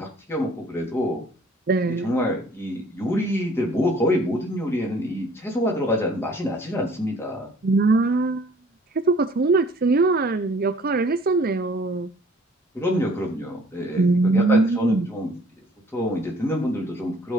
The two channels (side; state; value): both; normal; correlation 0.55